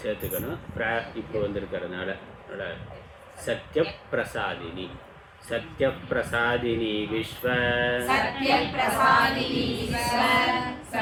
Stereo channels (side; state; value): both; identical; correlation 1.00